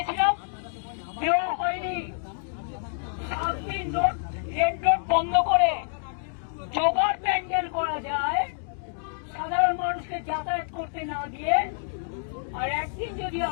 দেওয়া হয়নি। 7 দিন রেড রোড বন্ধ করে জোগাড় প্যান্ডেল করা যায় সাধারণ মানুষকে যাতায়াত করতে না দিয়ে, আর একদিন যদি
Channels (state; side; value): silent; right; digital silence